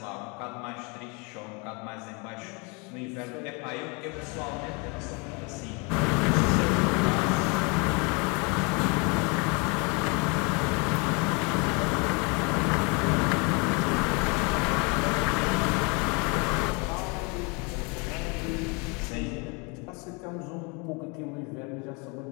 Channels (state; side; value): quieter; right; 31.3 dB